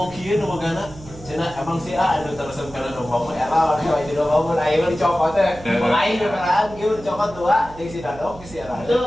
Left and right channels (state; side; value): noise; right; hum, 18 dB below the sound